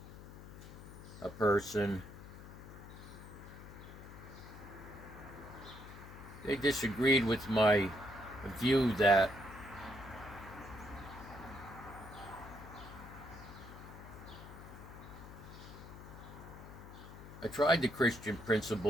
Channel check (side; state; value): left; noise; hum, 14 dB below the sound